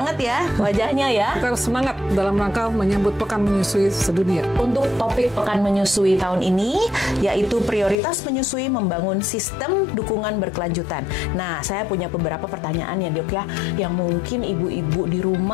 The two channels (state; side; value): drops out; right; at 8.0 s